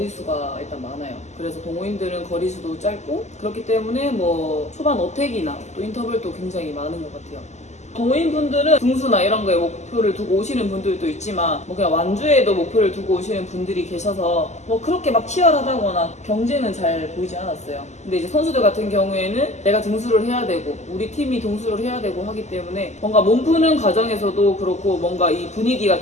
일단 많아요. 그래서 동호인들은 거리수도 짧고, 그렇기 때문에 뭐 초반 어택이나 또 인터벌도 굉장히 많은 것 같아요. 동호인분들은 등수나 이런 거에 목표를 두고 오시는 분들도 있지만, 뭐 그냥 완주에도 목표를 두고 오시는 분들이 계셔서 뭐 그렇게 막 치열하다거나 경쟁은 잘 보이지 않았어요. 근데 이제 선수들 같은 경우에는 내가 등수를 해야 되고 우리 팀이 등수를 해야 되고 하기 때문에 뭔가 몸 푸는 과정에서도 그렇고, 뭔가 이 분위기가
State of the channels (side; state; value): right; late; 0.33 ms